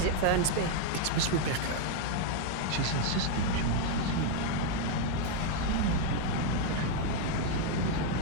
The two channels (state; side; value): different; both; correlation 0.00